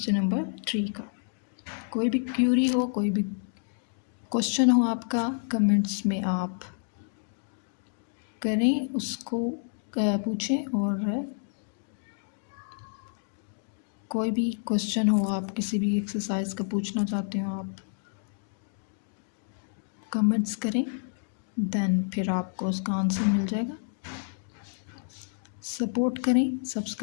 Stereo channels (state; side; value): silent; right; digital silence